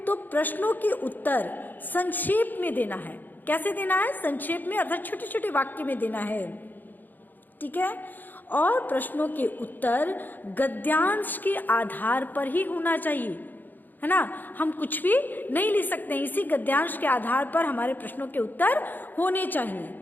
प्रश्नों के उत्तर संक्षेप में देना है। कैसे देना है? संक्षेप में, अर्थात छोटे छोटे वाक्य में देना है। ठीक है, और प्रश्नों के उत्तर गद्यांश के आधार पर ही होना चाहिए, है ना। हम कुछ भी नहीं लिख सकते, इसी गद्यांश के आधार पर हमारे प्रश्नों के उत्तर होने चाहिए।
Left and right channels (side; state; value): right; late; 0.087 ms